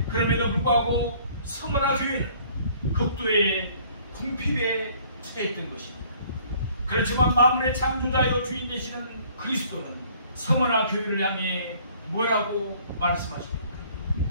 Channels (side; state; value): both; inverted; correlation -0.57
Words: 그럼에도 불구하고 서머나 교회는 극도의 궁핍에 처했던 것입니다. 그렇지만 만물의 창조자여 주인 되시는 그리스도는 서머나 교회를 향해 뭐라고 말씀하십니까?